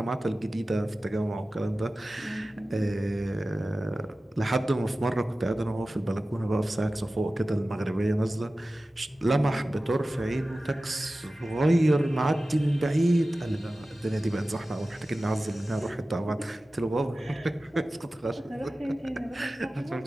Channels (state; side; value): normal; both; correlation 0.96